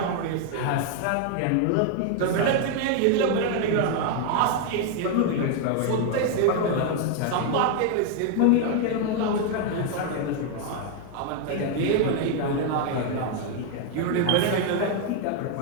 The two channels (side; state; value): both; different; correlation 0.00